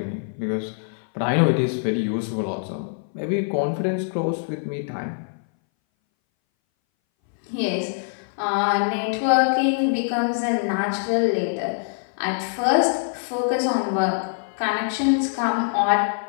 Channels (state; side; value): silent; right; 61 dB below the other